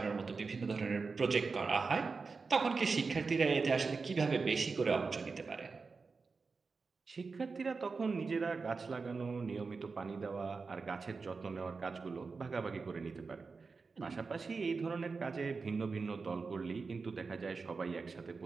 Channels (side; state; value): left; quieter; 4.5 dB